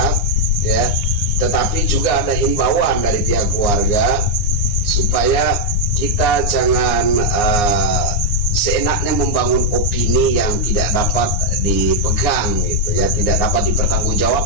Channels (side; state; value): right; late; 9.6 ms